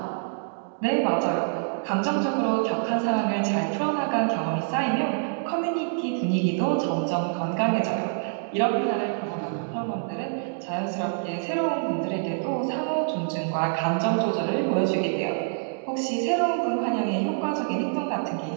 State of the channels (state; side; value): silent; left; digital silence